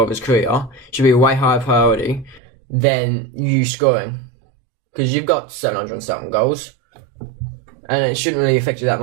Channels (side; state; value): left; drops out; at 2.4 s